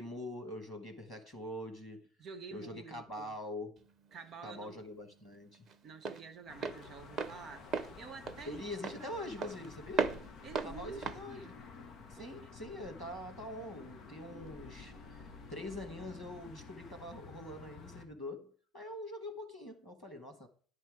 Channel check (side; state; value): both; normal; correlation 0.48